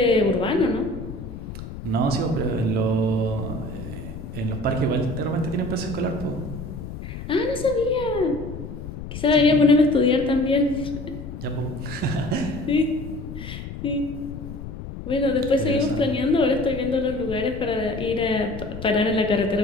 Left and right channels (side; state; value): left; noise; rumble, 10 dB below the sound